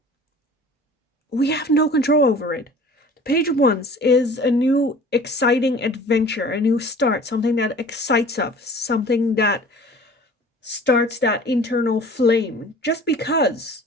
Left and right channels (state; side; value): normal; both; correlation 0.45